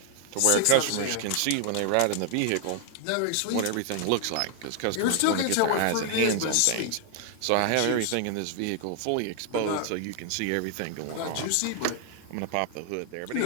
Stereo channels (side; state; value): both; different; correlation 0.00